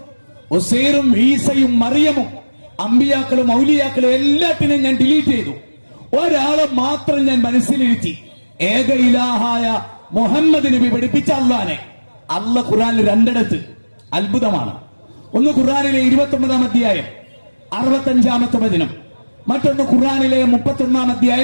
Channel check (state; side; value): inverted; both; correlation -1.00